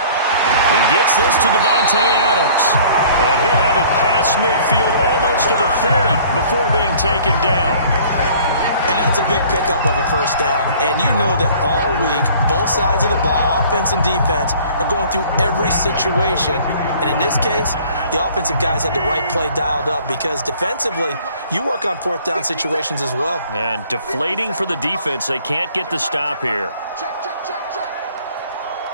He gets this to Devontae Adams. And he'll have it past midfield almost to the 40 before being taken down. And that's a big pickup of a 1st down. And you know that all week, both sides of the ball, offense and defense, are going through every situation. And in this case, the offensive guys had the right play dialed up because defensively, you work on 4th down situations as well. And deflating for the defense. They can't get the stop here. Check, check, check, check.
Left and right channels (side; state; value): both; inverted; correlation -0.52